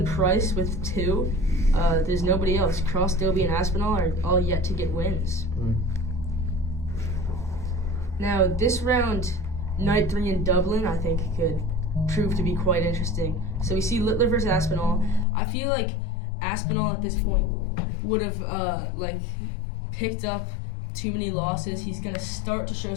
Price with 2, there's nobody else. Cross, Dobie, and Aspinall are all yet to get wins. Now this round night 3 in Dublin, I think could prove to be quite interesting. So we see Littler versus Aspinall. I feel like Aspinall at this point would have picked up too many losses. He's gonna start to show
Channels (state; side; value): drops out; right; at 15.2 s